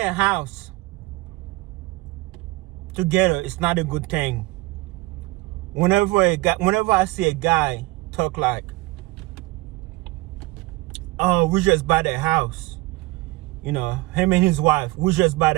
house together is not a good thing. Whenever I see a guy talk like, "Oh, we just bought a house," him and his wife, we just bought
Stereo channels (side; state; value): left; quieter; 21.6 dB